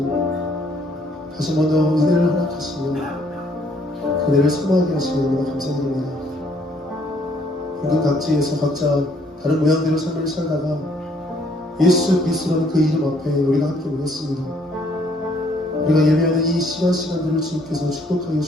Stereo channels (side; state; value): both; normal; correlation 0.65